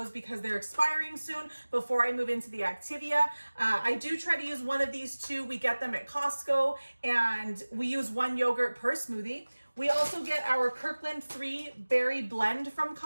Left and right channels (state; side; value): inverted; both; correlation -1.00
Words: because they're expiring soon before I move into the Activia. I do try to use one of these too. We get them at Costco, and we use 1 yogurt per smoothie. We also get our Kirkland 3 berry blend from